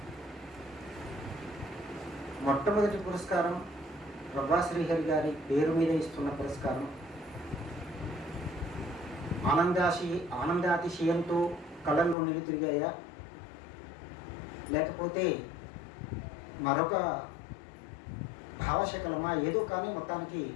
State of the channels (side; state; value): right; drops out; at 12.2 s